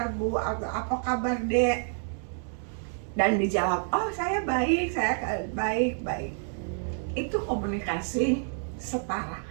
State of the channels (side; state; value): left; silent; 59 dB below the other